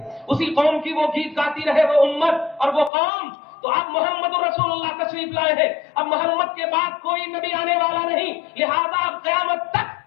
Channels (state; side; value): drops out; right; at 2.9 s